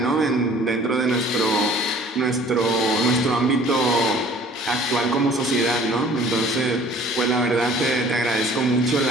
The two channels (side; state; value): both; normal; correlation 0.51